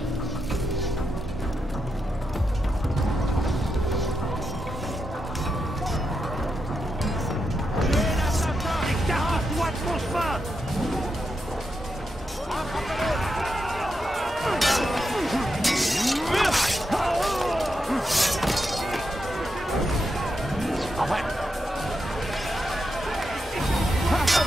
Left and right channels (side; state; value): both; normal; correlation 0.85